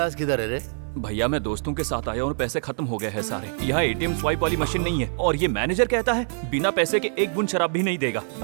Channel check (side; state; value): left; silent; 62 dB below the other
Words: किधर है रे? भैया मैं दोस्तों के साथ आया और पैसे खत्म हो गए हैं सारे। यहाँ एटीएम स्वाइप वाली मशीन नहीं है और ये मैनेजर कहता है बिना पैसे के एक बूंद शराब भी नहीं देगा।